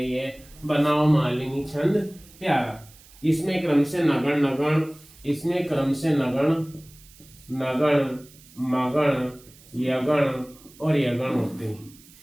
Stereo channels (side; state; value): right; noise; hiss, 24 dB below the sound